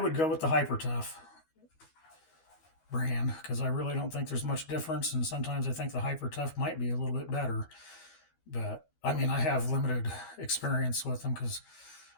go with the Hyper Tough brand, because I really don't think there's much difference, and sometimes I think the Hyper Tough might be a little bit better. But I have limited experience with them, because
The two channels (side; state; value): right; late; 13 ms